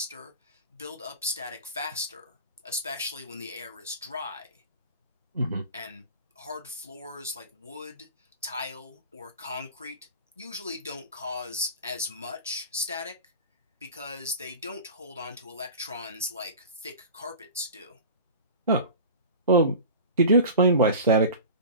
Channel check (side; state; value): both; inverted; correlation -0.35